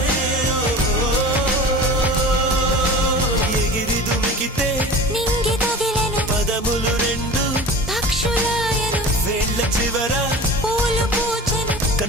ఎగిరి దుమికితే నింగి తగిలెను పదములు రెండు పక్షులాయను వేళ్ళ చివర పూలు పూచెను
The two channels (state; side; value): normal; both; correlation 0.36